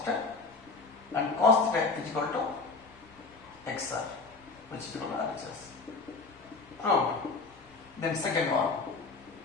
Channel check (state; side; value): quieter; right; 4.0 dB